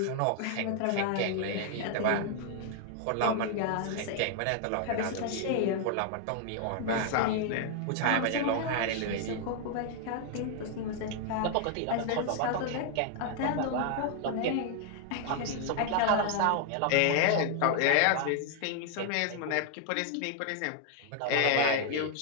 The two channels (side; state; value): both; different; correlation 0.00